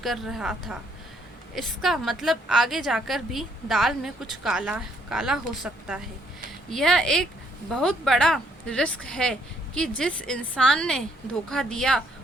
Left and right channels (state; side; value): normal; both; correlation 0.69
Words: रहा था। इसका मतलब आगे जाकर भी दाल में कुछ काला काला हो सकता है। यह एक बहुत बड़ा रिस्क है कि जिस इंसान ने धोखा दिया